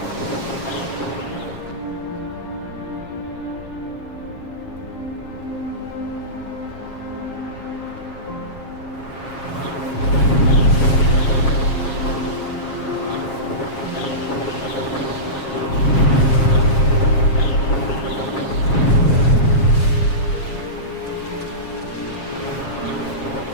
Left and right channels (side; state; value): right; late; 7.4 ms